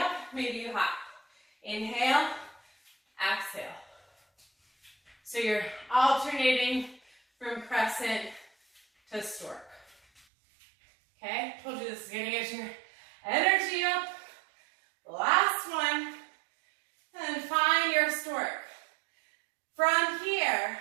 maybe you hop. Inhale, exhale. So you're alternating from crescent to stork. Okay, told you this is gonna get your energy up. Last one. And find your stork. From here,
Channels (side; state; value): left; drops out; at 10.2 s